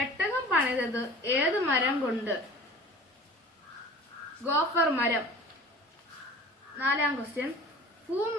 പണിതത് ഏത് മരം കൊണ്ട്? ഗോഫർ മരം. നാലാം ക്വസ്റ്റ്യൻ,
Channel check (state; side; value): normal; both; correlation 0.42